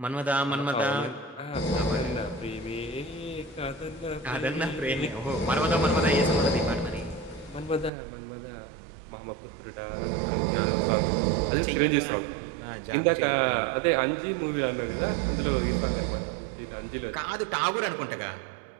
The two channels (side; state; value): left; drops out; at 7.9 s